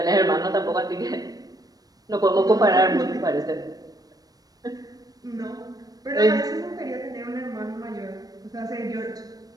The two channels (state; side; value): late; left; 0.18 ms